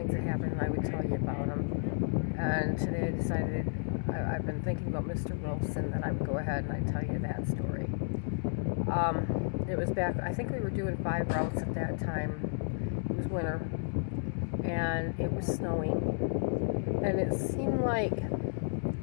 that happened, and I would tell you about them. And today I decided, I've been thinking about Mr. Wilson, that I would go ahead and I'd tell you that story. It was back, I think we were doing 5 routes at that time. It was winter, and it was snowing. And it seemed like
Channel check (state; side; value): silent; right; digital silence